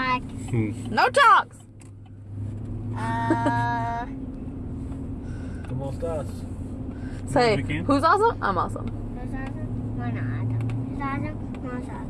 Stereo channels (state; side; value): identical; both; correlation 1.00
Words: No talks. Come on, Stas. Say, We can. who's awesome? I'm awesome. Who's awesome? We're not awesome. Who's awesome? We're